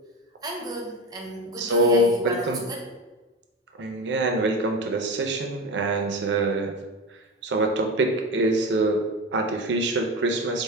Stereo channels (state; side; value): normal; both; correlation 0.23